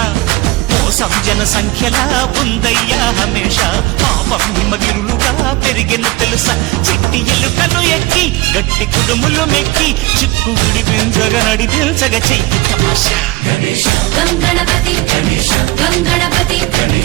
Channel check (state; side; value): quieter; left; 20.4 dB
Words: మోసం జన సంఖ్యలా ఉందయ్యా హమేష పాపం హిమగిరులుగా పెరిగెను తెలుసా చిట్టి ఎలుకలు ఎక్కి గట్టి కుడుములు మెక్కి చిక్కు విడిపించగ నడిపించగ చెయ్యి తమాషా గణపతి గణపతి